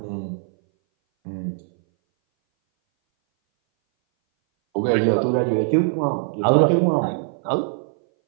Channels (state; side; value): silent; left; 60 dB below the other